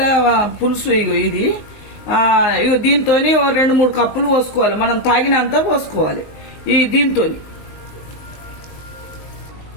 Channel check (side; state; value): right; late; 19 ms